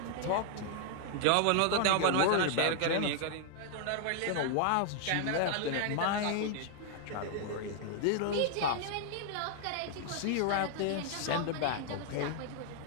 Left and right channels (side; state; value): both; different; correlation 0.00